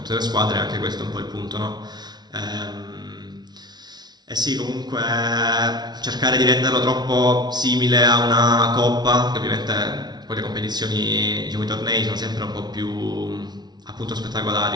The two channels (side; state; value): left; late; 0.20 ms